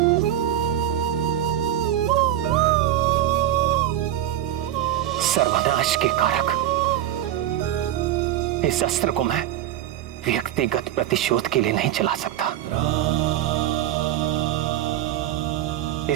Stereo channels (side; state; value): left; quieter; 12.2 dB